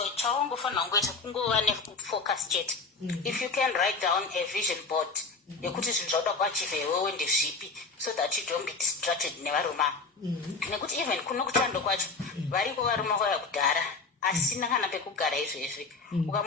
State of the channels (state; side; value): quieter; right; 4.2 dB